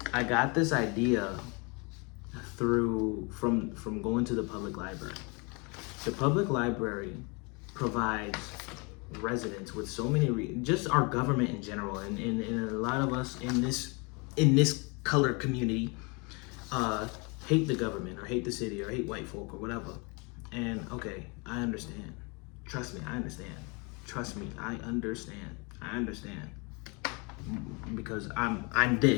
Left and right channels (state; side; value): quieter; right; 30.6 dB